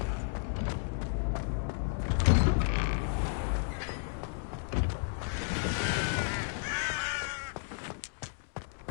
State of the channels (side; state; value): right; silent; digital silence